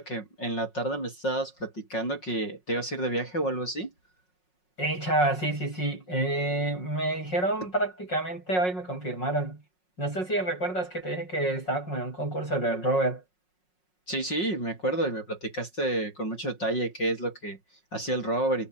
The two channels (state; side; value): late; right; 5.5 ms